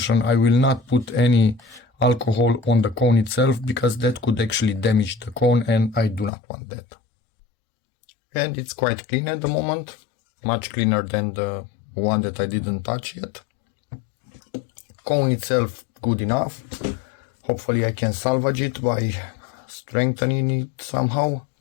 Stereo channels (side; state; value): right; drops out; at 6.3 s